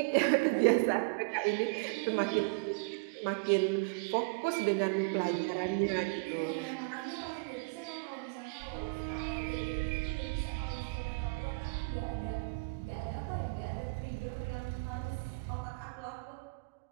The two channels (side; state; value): left; quieter; 31.5 dB